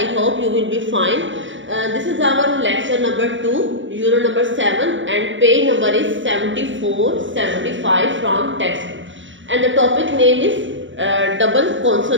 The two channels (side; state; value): left; late; 0.55 ms